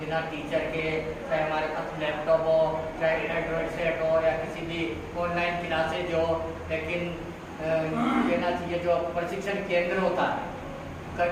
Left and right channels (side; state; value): both; identical; correlation 1.00